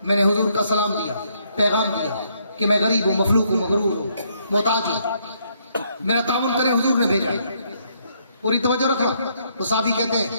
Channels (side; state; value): both; inverted; correlation -0.71